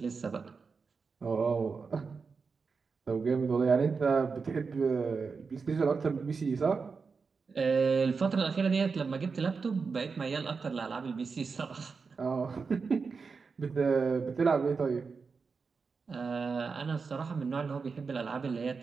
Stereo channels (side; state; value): left; quieter; 5.0 dB